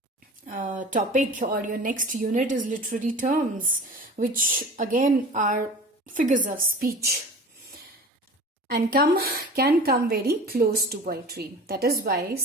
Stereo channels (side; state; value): both; normal; correlation 0.39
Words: topic or your next unit is literary terms, which again are figures of speech and can come very close to poetry. That is why